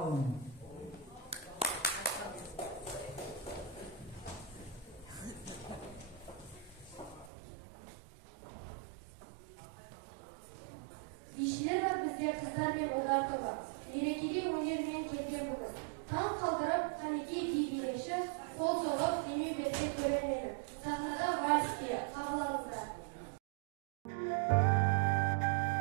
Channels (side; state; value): left; drops out; at 7.3 s